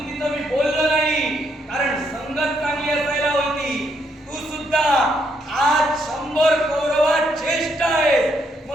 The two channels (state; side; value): normal; both; correlation 0.74